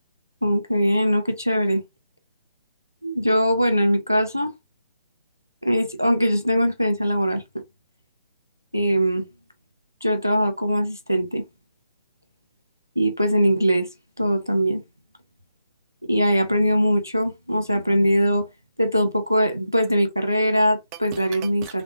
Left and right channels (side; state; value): both; inverted; correlation -0.89